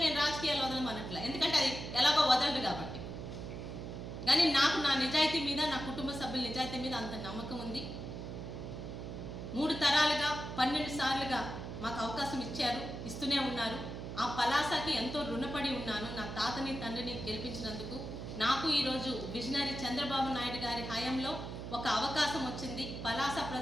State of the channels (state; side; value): noise; right; hum, 7 dB below the sound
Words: నేను రాజకీయాలు వదలమనట్లే, ఎందుకంటే అది ఎలాగో వదలడు కాబట్టి. కానీ నాకు నా నిజాయితీ మీద, నా కుటుంబ సభ్యుల నిజాయితీ మీద అంత నమ్మకం ఉంది. 3 తరాలుగా 12 సార్లుగా మాకు అవకాశం ఇచ్చారు, ఇస్తూనే ఉన్నారు. ఆ పలాసకి ఎంతో రుణపడి ఉన్నాను. నా తాతని తండ్రిని గెలిపించినందుకు నాకు ఈరోజు విజనరీ చంద్రబాబు నాయుడు గారి హయాంలో ఒక అవకాశం వచ్చింది. పలాస